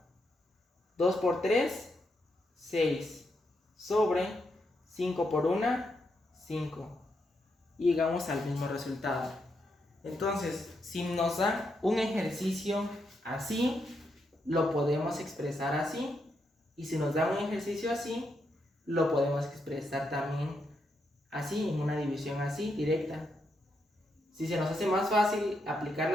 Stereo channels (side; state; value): both; normal; correlation 0.81